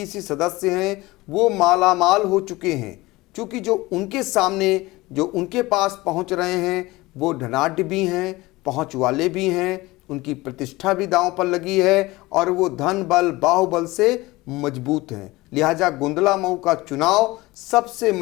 सदस्य हैं वो मालामाल हो चुके हैं, क्योंकि जो उनके सामने जो उनके पास पहुँच रहे हैं वो धनाढ्य भी हैं, पहुँच वाले भी हैं, उनकी प्रतिष्ठा भी दांव पर लगी है और वो धन बल बाहुबल से मजबूत हैं। लिहाजा गोंदला मऊ का चुनाव सबसे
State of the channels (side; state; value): right; quieter; 20.5 dB